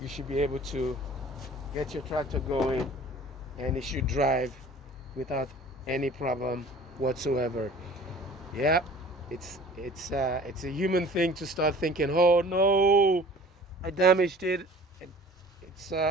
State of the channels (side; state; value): both; normal; correlation 0.47